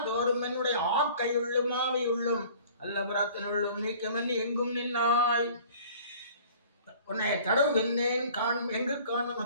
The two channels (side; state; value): both; inverted; correlation -0.49